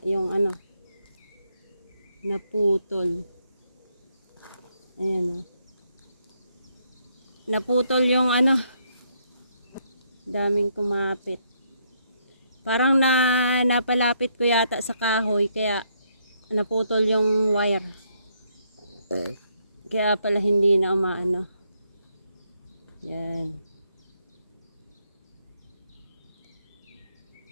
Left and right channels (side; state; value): both; inverted; correlation -0.74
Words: yung ano. Naputol. Ayan oh. Naputol yung ano. Daming kumapit. Parang napalapit ko yata sa kahoy kaya naputol yung wire. Kaya pala hindi na umaano. Yan.